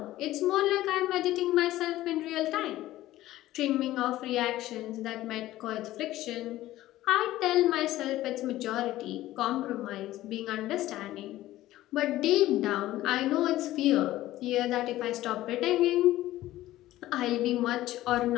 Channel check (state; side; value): quieter; right; 15.4 dB